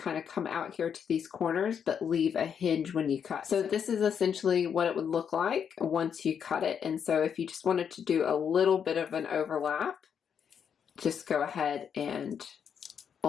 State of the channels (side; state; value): right; quieter; 7.6 dB